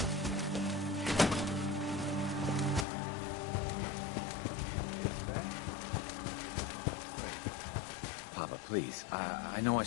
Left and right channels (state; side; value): drops out; right; at 2.9 s